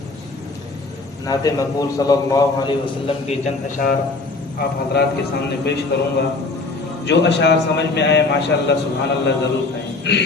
مقبول صلی اللہ علیہ وسلم کے چند اشعار آپ حضرات کے سامنے پیش کروں گا. جو اشعار سمجھ میں آئے ماشاءاللہ سبحان اللہ ضرور کہیں.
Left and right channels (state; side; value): quieter; right; 3.6 dB